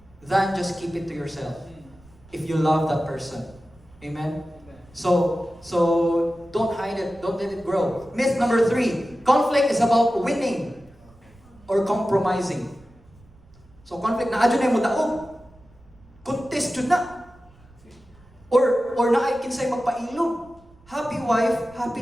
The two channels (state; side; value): noise; right; rumble, 27 dB below the sound